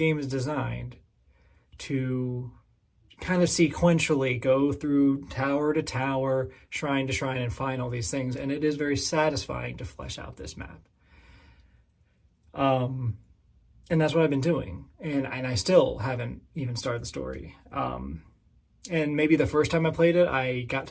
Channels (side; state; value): both; identical; correlation 1.00